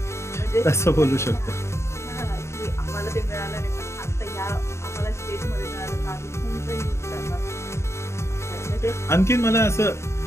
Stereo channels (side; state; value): right; late; 0.13 ms